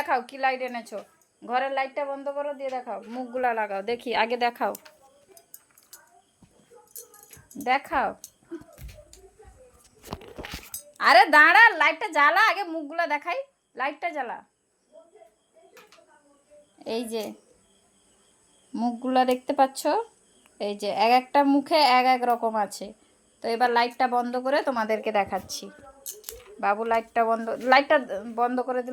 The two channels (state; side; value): identical; both; correlation 1.00